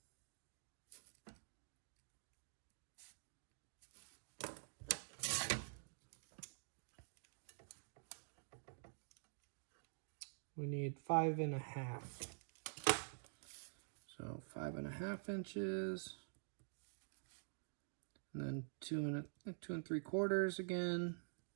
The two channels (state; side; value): silent; left; digital silence